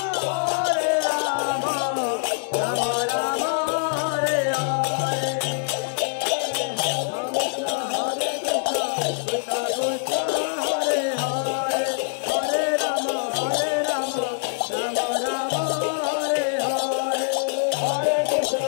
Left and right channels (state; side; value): silent; right; 62 dB below the other